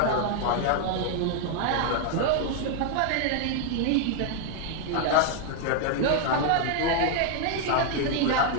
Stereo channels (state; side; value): different; both; correlation 0.00